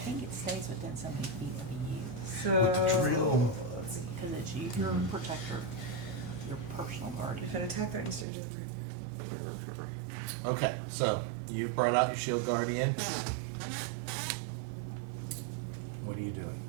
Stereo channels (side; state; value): left; drops out; at 8.2 s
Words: it stays within so many feet of you. So with the drill. Because it's you, you're a protector, your personal guardian. If an attack threatens stage Okay, so you brought out your shield guardian. What are you doing?